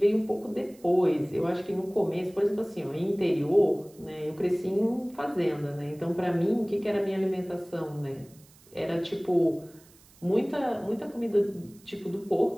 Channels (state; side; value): noise; right; hiss, 27 dB below the sound